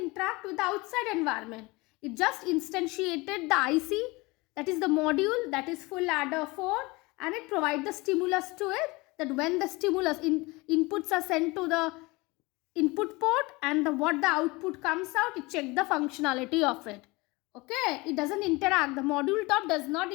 with the outside environment. It just instantiated the IC, that is the module, that is full ladder 4, and it provides the stimulus to it, that when the stimulus inputs are sent to the input port and what the output comes out, it checks the functionality of it. Okay, it doesn't interact. The module top does not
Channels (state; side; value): quieter; right; 23.8 dB